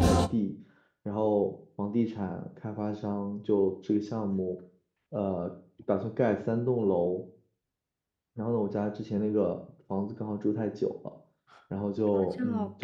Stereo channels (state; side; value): identical; both; correlation 1.00